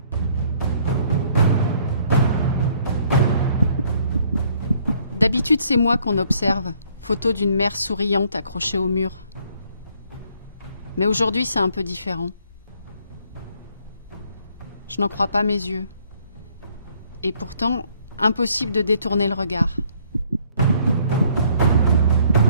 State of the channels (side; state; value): both; inverted; correlation -0.64